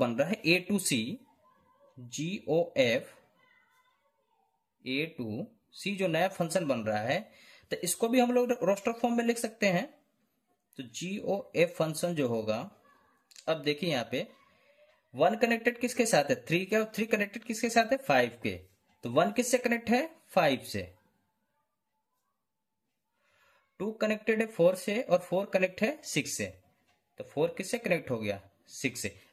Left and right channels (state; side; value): identical; both; correlation 1.00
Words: रहा है A to C, GOF A to C, जो नया फंक्शन बन रहा है, तो इसको भी हम लोग रोस्टर फॉर्म में लिख सकते हैं। तो GOF फंक्शन जो होगा, अब देखिए यहाँ पे 1 कनेक्टेड किसके साथ है, 3 के, और 3 कनेक्टेड किसके साथ है, 5 के। तो 1 किससे कनेक्ट है, 5 से। 2 कनेक्टेड है 4 से, और 4 कनेक्ट है 6 से। तो 4 किससे कनेक्ट हो गया, 6 से।